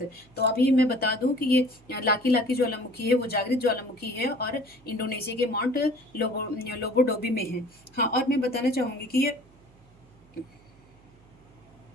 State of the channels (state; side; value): noise; right; hum, 28 dB below the sound